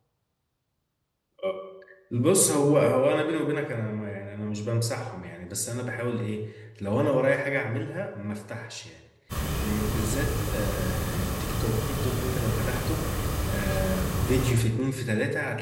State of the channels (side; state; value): both; identical; correlation 1.00